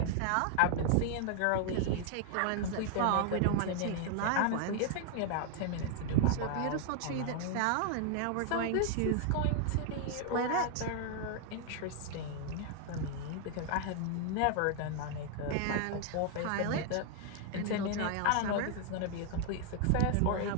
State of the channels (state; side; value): different; both; correlation 0.00